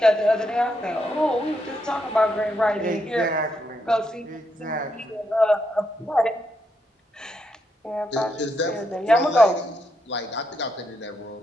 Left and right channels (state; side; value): normal; both; correlation 0.80